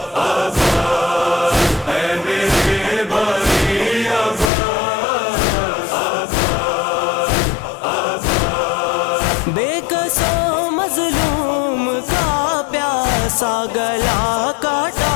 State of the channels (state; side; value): drops out; right; at 4.5 s